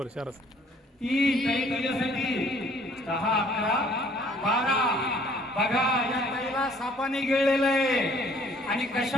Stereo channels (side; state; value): both; normal; correlation 0.58